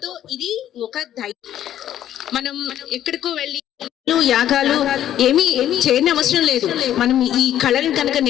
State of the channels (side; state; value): right; quieter; 11.4 dB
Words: ఇది ఒక ధైర్యం. మనం ఎక్కడికో వెళ్ళి యాగాలు ఏమీ చేయని అవసరం లేదు. మనం ఈ కళను కనుక